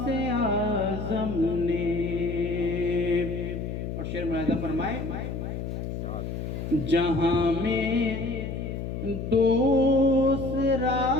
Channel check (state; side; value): noise; left; hum, 5 dB below the sound